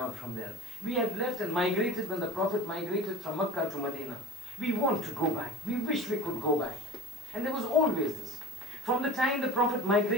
from there. We had left and migrated when the Prophet migrated from Makkah to Medina. We want to go back. We wish we could go back. And there was always this. From the time the Prophet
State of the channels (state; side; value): normal; both; correlation 0.38